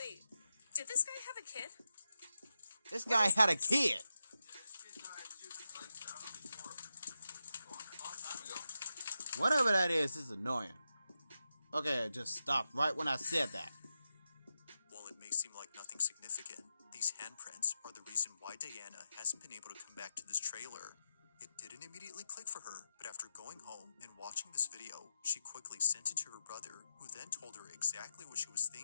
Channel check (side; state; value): both; inverted; correlation -0.87